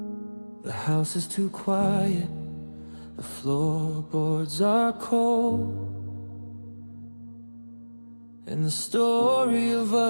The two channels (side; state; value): both; inverted; correlation -1.00